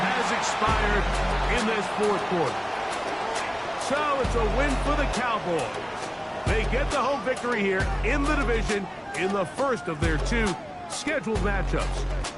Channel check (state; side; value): identical; both; correlation 1.00